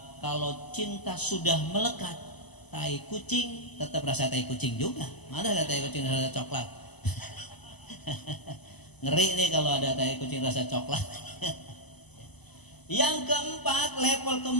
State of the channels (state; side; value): late; right; 0.99 ms